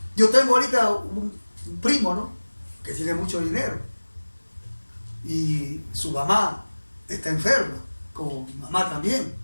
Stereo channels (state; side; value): inverted; both; correlation -1.00